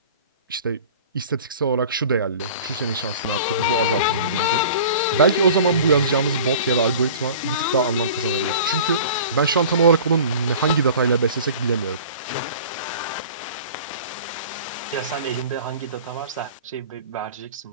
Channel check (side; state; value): both; inverted; correlation -0.42